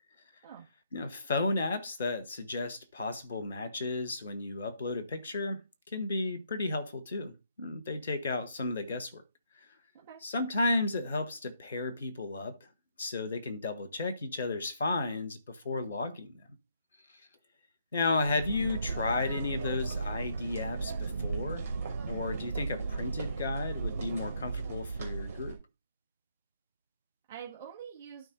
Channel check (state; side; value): inverted; both; correlation -0.73